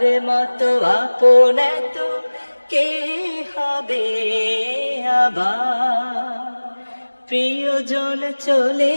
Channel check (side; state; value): both; inverted; correlation -1.00